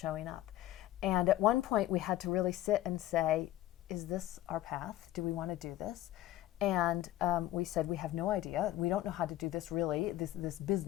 up. And at one point we had to really sit and say, is this our path? Do we want to do this? And we said, we have no idea. We don't know how to do this really, this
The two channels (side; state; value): right; quieter; 14.3 dB